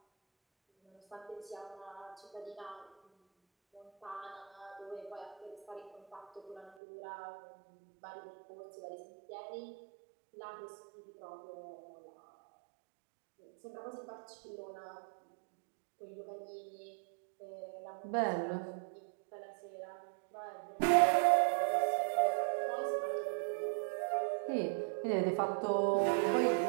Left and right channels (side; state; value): left; drops out; at 6.8 s